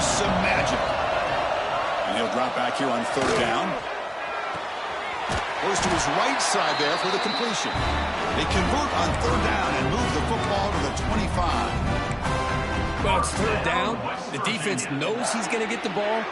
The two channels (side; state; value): both; identical; correlation 1.00